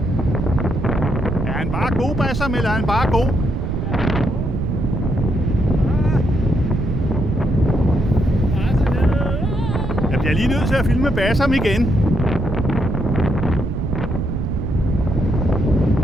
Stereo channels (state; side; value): noise; right; rumble, 2 dB below the sound